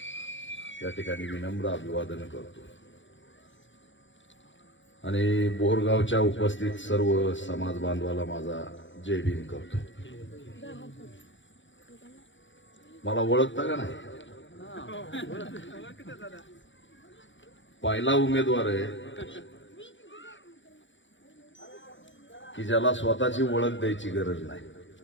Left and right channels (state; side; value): late; right; 0.55 ms